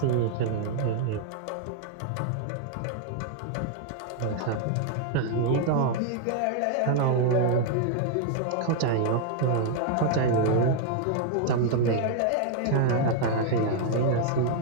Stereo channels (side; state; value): both; different; correlation 0.00